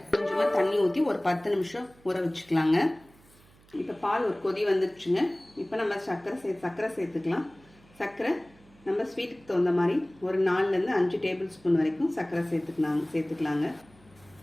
கொஞ்சமாக தண்ணி ஊற்றி ஒரு 10 நிமிஷம் ஊற வச்சுக்கலாங்க. இப்போ பால் ஒரு கொதி வந்துடுச்சுங்க. இப்போ நம்ம சர்க்கரை சேர்த்துக்கலாம். சர்க்கரை நம்ம ஸ்வீட்டுக்கு தகுந்த மாதிரி ஒரு 4லேருந்து 5 டேபிள் ஸ்பூன் வரைக்கும் சர்க்கரை சேர்த்துக்கலாங்க.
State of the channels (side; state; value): right; noise; hum, 28 dB below the sound